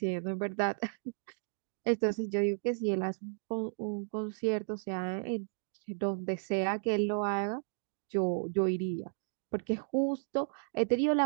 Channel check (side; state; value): left; silent; digital silence